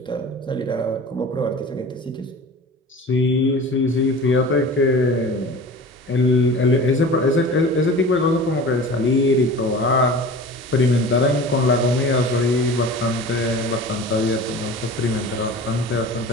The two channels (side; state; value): both; normal; correlation 0.38